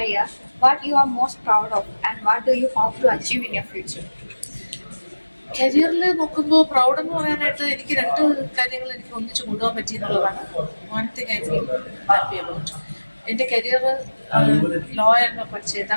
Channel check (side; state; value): both; inverted; correlation -1.00